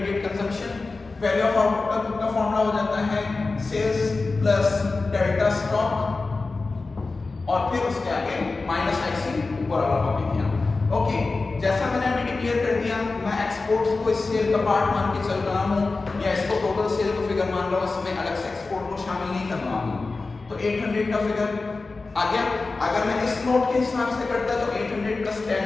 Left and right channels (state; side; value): quieter; right; 3.7 dB